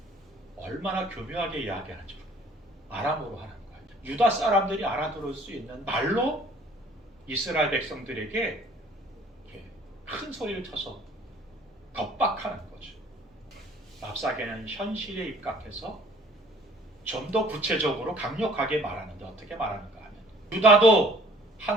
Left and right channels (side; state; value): both; normal; correlation 0.54